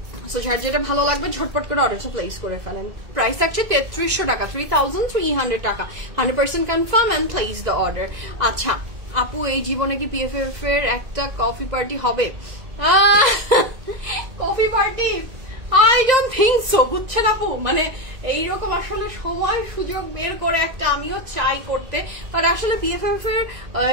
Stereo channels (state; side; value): late; left; 1.9 ms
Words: সো যার যেটা ভালো লাগবে ঝটপট করে অর্ডারটা প্লেস করে ফেলেন। প্রাইস থাকছে 3300 টাকা, 3300 টাকা, 100% confirm and place the order. আচ্ছা, আপু এই জীবনে কি পিএফএফ এর একটা কফি পার্টি হবে? Coffee party I don't think so, বুঝছেন আপু? মানে এইরকম আসলে সময় সুযোগ বের করে একটা আমিও চাই করতে, বাট আসলে পিএফএফ এর